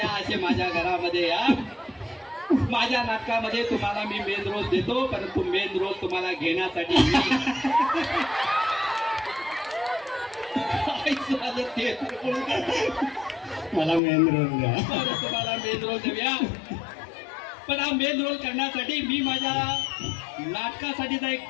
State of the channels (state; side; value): drops out; right; at 14.0 s